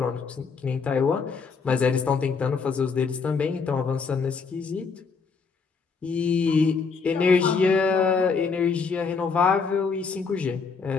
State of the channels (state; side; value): quieter; right; 5.1 dB